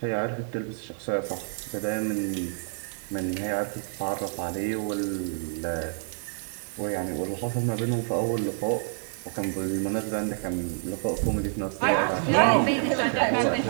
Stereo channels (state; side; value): silent; left; digital silence